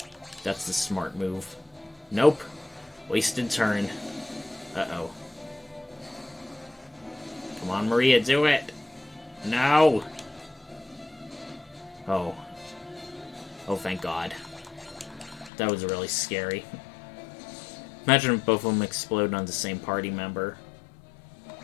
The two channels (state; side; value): drops out; right; at 15.5 s